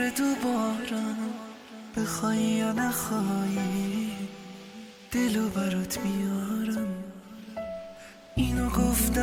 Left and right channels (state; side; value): identical; both; correlation 1.00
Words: دوبارم، بخوای یا نخوایی دلو برات میارم. اینو